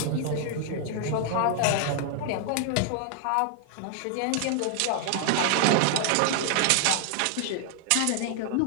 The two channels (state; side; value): different; both; correlation 0.00